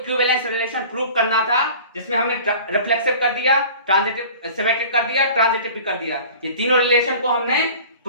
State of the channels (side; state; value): both; inverted; correlation -0.42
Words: रिलेशन प्रूव करना था, जिसमें हमने रिफ्लेक्सिव कर दिया, ट्रांजिटिव सिमेट्रिक कर दिया, ट्रांजिटिव भी कर दिया, ये तीनों रिलेशन को हमने